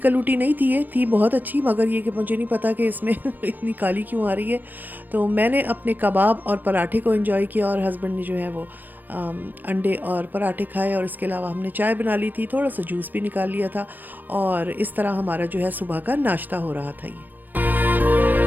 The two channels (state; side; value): late; left; 0.085 ms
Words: नहीं थी, ये थी बहुत अच्छी, मगर ये कि मुझे नहीं पता कि इसमें इतनी काली क्यों आ रही है। तो मैंने अपने कबाब और पराठे को एंजॉय किया और हस्बैंड ने जो है वो अंडे और पराठे खाए, और इसके अलावा हमने चाय बना ली थी, थोड़ा सा जूस भी निकाल लिया था, और इस तरह हमारा जो है सुबह का नाश्ता हो रहा था ये।